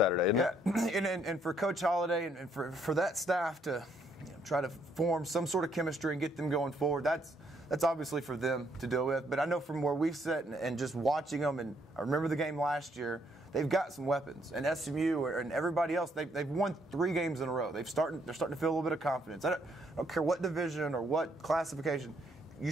isn't it? Yeah, and for Coach Holliday and for that staff to try to form some sort of chemistry and get them going forward, that's obviously for them to deal with. But I know from where we've sat and just watching them, and I remember the game last year, they've got some weapons. And SMU and everybody else, they've won 3 games in a row. They're starting to feel a little bit of confidence. I don't care what division or what classification. You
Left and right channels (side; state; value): both; normal; correlation 0.70